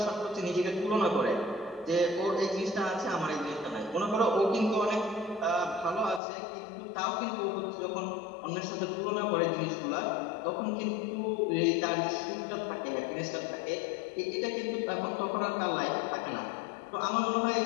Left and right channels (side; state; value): right; drops out; at 6.2 s